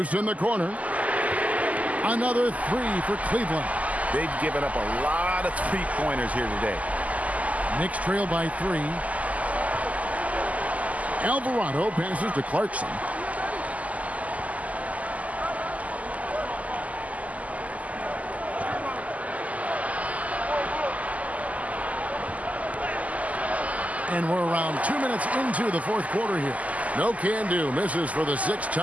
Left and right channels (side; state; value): left; late; 0.073 ms